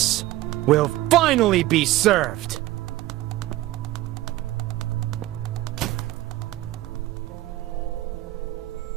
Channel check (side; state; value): left; quieter; 16.3 dB